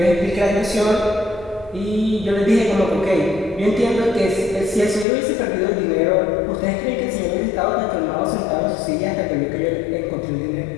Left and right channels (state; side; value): drops out; right; at 5.1 s